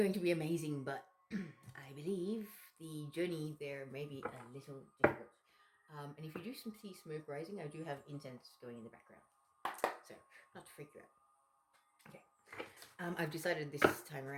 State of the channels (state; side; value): identical; both; correlation 1.00